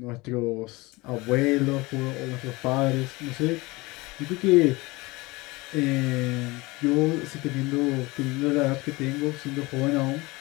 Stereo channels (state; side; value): quieter; right; 22.8 dB